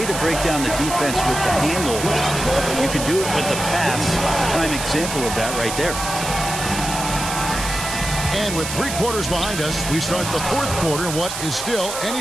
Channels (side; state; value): right; noise; hiss, 6 dB below the sound